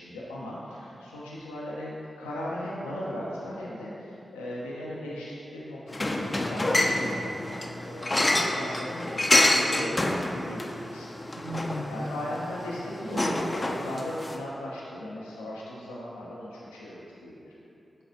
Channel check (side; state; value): both; normal; correlation 0.94